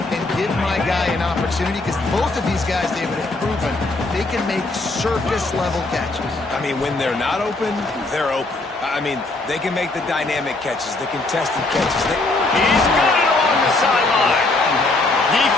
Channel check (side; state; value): right; quieter; 3.1 dB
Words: give my guy an opportunity, because both of these guys, David, have proven they can make circus-level catches. I mean, when they're not open, they're open. I mean, they can make the dynamic catches, the contested catches. He's got it along the sideline.